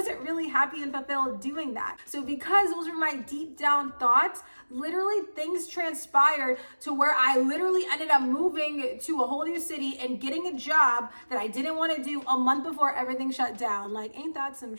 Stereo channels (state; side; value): inverted; both; correlation -1.00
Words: really happy and fulfilled doing that. So because those were my deep down thoughts, literally things transpired to where I literally ended up moving to a whole new city and getting a job that I didn't want to do a month before everything shut down. Like, ain't that some